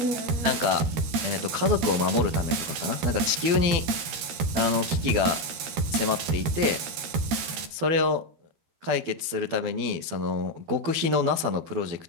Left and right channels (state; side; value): late; left; 13 ms